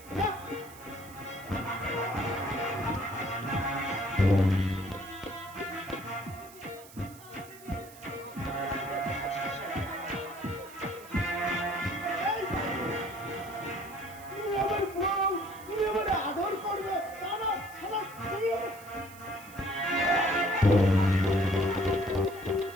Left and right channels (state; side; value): noise; right; hiss, 20 dB below the sound